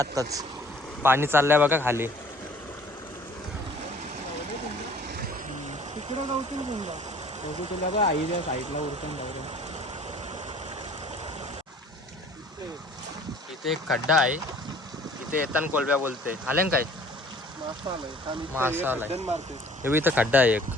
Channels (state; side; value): normal; both; correlation 0.52